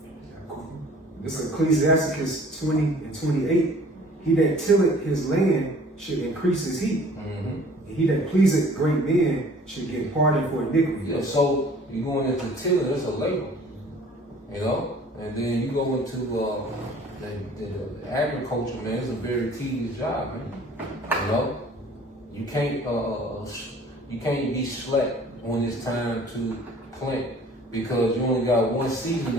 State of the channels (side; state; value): both; normal; correlation 0.51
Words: This is Ecclesiasticus 20 and 28. He that tilleth his land should increase his heat. Mm-hmm. And he that pleaseth great men should get pardon for iniquity. Yeah, so you going into tilling, it's a labor, you know, and then you go into the agriculture, man. It's a very tedious job, man. You know, you can't be slack when it's time to plant because you only got one season